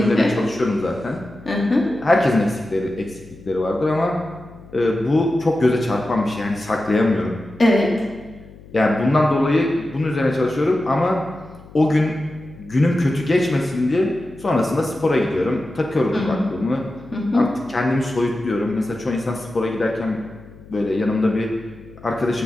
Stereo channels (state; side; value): noise; left; hum, 20 dB below the sound